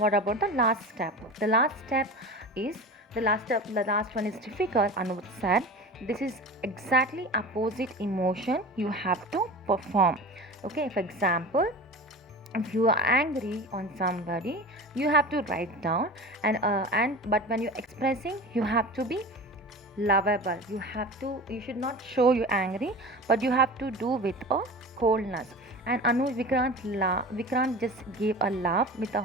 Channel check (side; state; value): both; normal; correlation 0.33